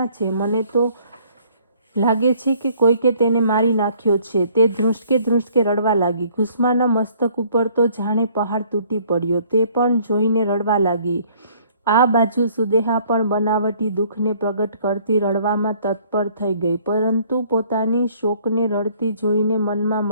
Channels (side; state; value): both; inverted; correlation -0.60